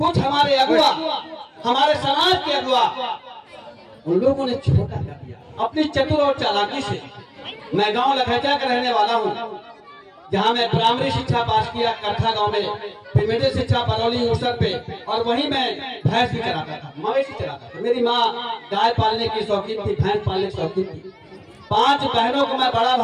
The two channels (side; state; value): both; identical; correlation 1.00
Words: हमारे अगुआ, हमारे समाज के अगुआ, उन लोगों ने छोटा कर दिया अपनी चतुर और चालाकी से। मैं गांव लखैचा का रहने वाला हूँ, जहाँ मैं प्राइमरी शिक्षा पास किया करखा गांव में, फिर मिडिल शिक्षा बरौली ऊसर पे, और वहीं मैं भैंस भी चराता था, मवेशी चराता था। मेरी माँ गाय पालने की शौकीन थी, भैंस पालने की शौकीन थी। 5 बहनों को मैं बड़ा